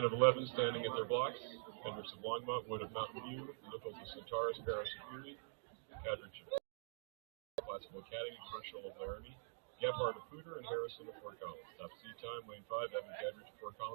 of 11 standing at their blocks. Hendricks of Longmont, Wood of Mountain View, Nichols of Centaurus, Paris of Fury, Cadridge of Classical Academy, Churchill of Laramie, Gebhardt of Pooter, and Harrison of Fort Collins. Top seed time, lane 5, Evan Cadridge of Fort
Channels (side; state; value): left; silent; digital silence